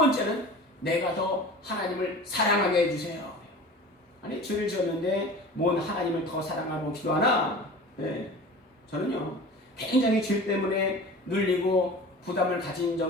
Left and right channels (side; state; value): both; normal; correlation 0.38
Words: 내가 더 하나님을 사랑하게 해주세요. 죄를 지었는데 뭔 하나님을 더 사랑하고 기도하나? 예, 저는요 굉장히 죄 때문에 눌리고 부담을 가진